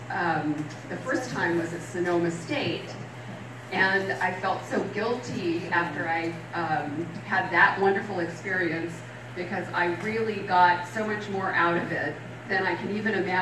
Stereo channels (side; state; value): both; identical; correlation 1.00